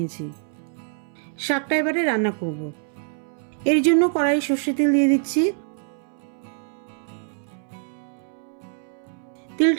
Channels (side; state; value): left; silent; 62 dB below the other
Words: শাকটা এবারে রান্না করব। এর জন্য কড়াই সর্ষে তেল দিয়ে দিচ্ছি।